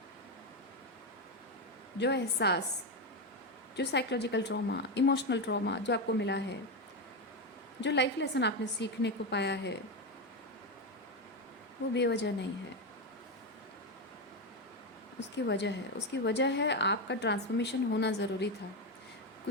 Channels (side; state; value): both; normal; correlation 0.10